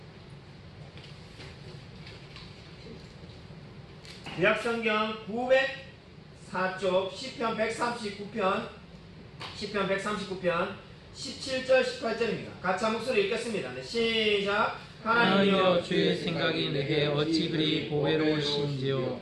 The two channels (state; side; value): identical; both; correlation 1.00